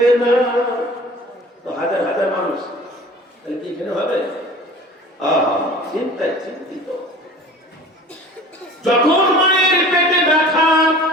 না। তো হাজার হাজার মানুষ তাহলে কি এখানে হবে? চিন্তায় চিন্তিত। যখন মায়ের পেটে ব্যথা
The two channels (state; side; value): normal; both; correlation 0.43